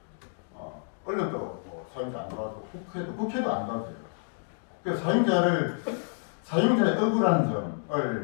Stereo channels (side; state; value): right; silent; digital silence